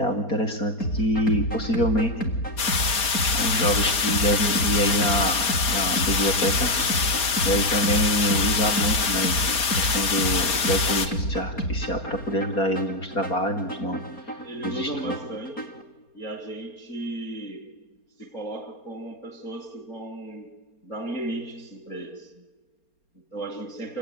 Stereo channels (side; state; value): right; late; 4.3 ms